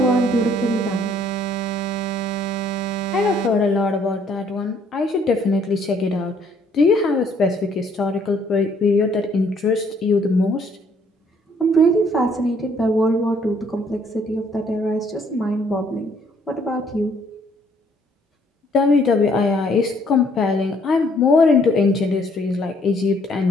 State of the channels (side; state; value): both; normal; correlation 0.64